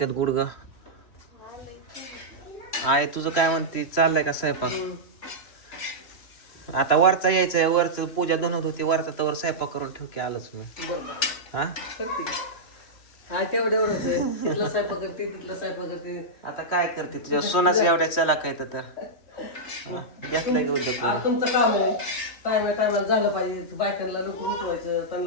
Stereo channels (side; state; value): right; late; 3.0 ms